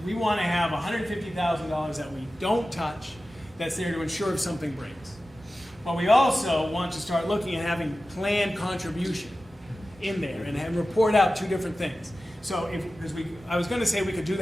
we want to have $150,000 that we don't touch, that's there to ensure if something breaks. But we also want to start looking at having planned contribution in there and report out two different things. So I was going to say we could do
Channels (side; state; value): both; normal; correlation 0.95